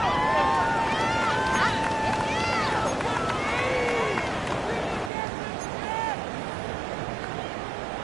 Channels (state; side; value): drops out; left; at 5.1 s